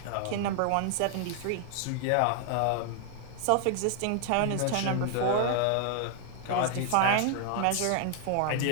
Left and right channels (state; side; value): different; both; correlation 0.00